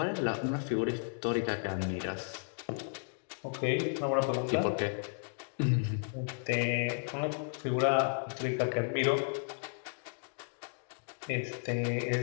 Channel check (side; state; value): right; silent; 55 dB below the other